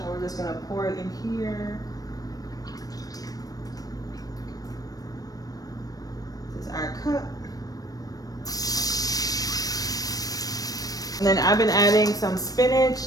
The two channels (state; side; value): late; right; 0.18 ms